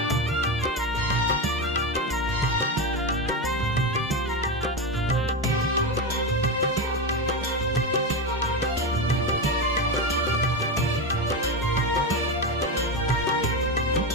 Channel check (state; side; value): normal; both; correlation 0.15